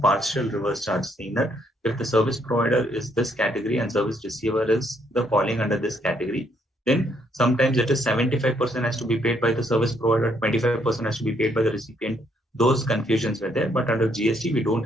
partial reverse charge, saying that if the service provider is this category and service receiver is the falling under this category, then sometimes it is 75% has to be paid by the service provider, 25% has to be paid by the recipient. Those confusions were there, but under GST we don't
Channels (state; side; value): normal; both; correlation 0.71